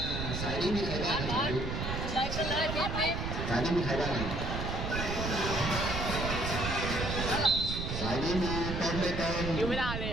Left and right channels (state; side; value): noise; right; rumble, 3 dB below the sound